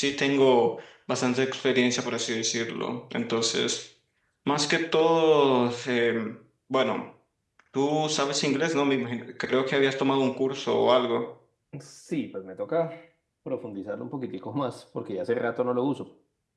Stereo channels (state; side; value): identical; both; correlation 1.00